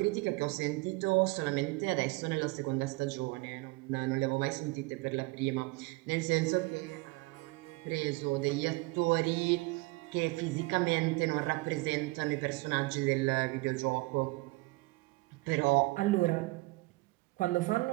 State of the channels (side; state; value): left; quieter; 23.9 dB